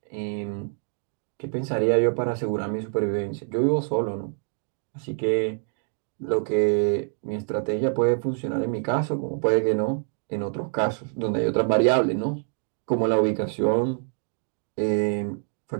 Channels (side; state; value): left; silent; 61 dB below the other